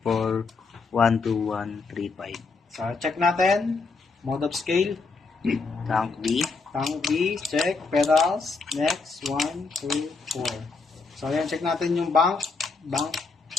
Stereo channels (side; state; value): right; quieter; 4.3 dB